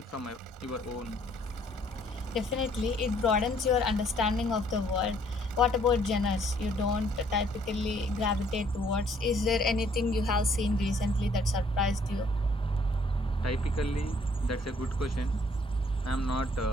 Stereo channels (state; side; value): normal; both; correlation 0.63